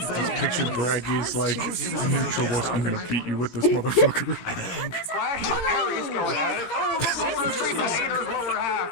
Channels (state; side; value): late; right; 17 ms